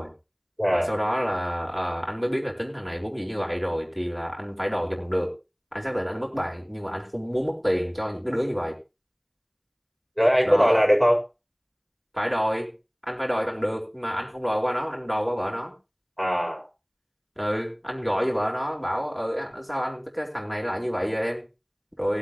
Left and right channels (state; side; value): identical; both; correlation 1.00